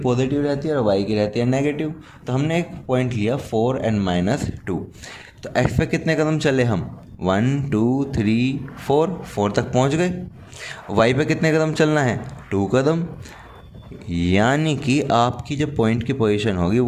रहती है और y की रहती है नेगेटिव। तो हमने एक पॉइंट लिया 4 और -2। तो x पे कितने कदम चले हम, 1 2 3 4 तक पहुंच गए। y पे कितने कदम चलना है, 2 कदम, यानी कि आपकी जो पॉइंट की पोजीशन होगी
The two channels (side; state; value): both; identical; correlation 1.00